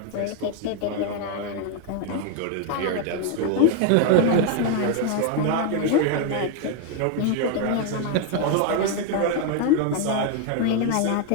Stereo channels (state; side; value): different; both; correlation 0.00